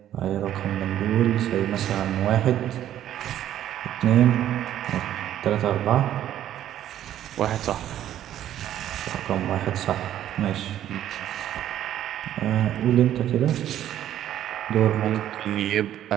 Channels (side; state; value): left; quieter; 11.7 dB